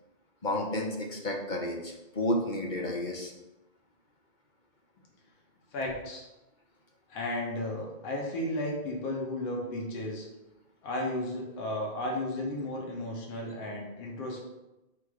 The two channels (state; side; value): late; right; 2.2 ms